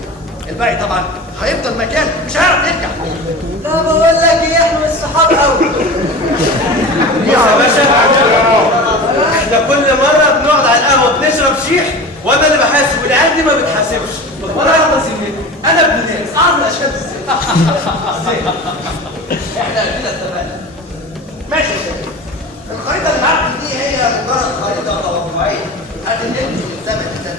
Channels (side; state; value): both; normal; correlation 0.33